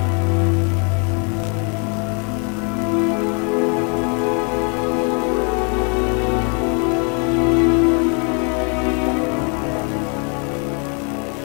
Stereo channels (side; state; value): right; quieter; 37.3 dB